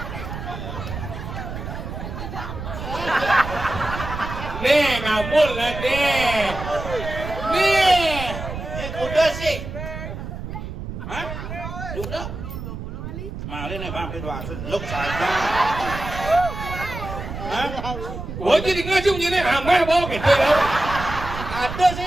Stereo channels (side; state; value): right; noise; rumble, 8 dB below the sound